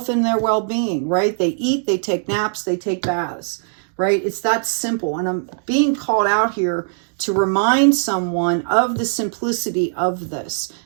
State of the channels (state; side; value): silent; left; digital silence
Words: and their well-being, right? They eat, they take naps, they take baths, right? It's that simple. And I'm being called out here to remind someone of the simplicity of this.